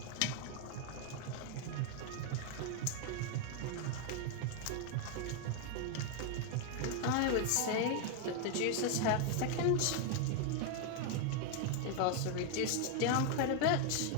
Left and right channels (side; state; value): both; different; correlation 0.01